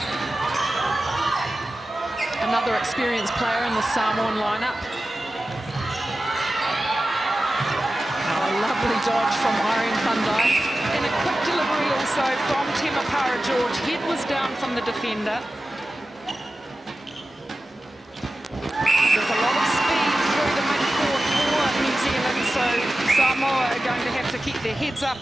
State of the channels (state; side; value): normal; both; correlation 0.94